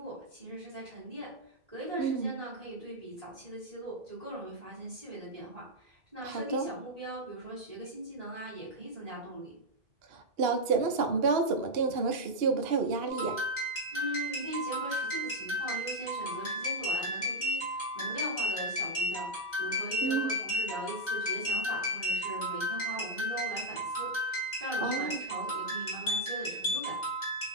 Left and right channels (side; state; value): left; late; 2.8 ms